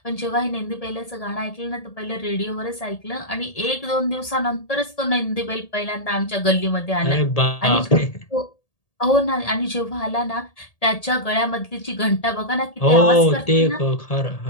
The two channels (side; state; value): right; late; 1.8 ms